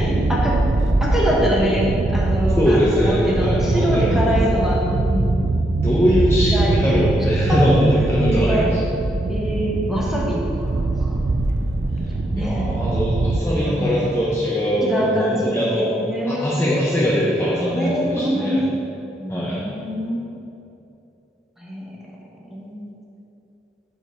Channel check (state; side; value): normal; both; correlation 0.78